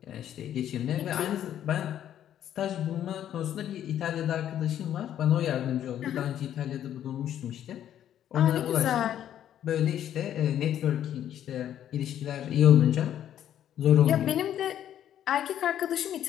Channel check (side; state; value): right; quieter; 10.8 dB